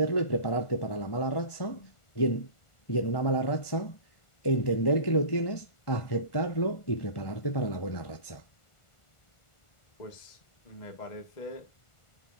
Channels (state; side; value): late; right; 1.4 ms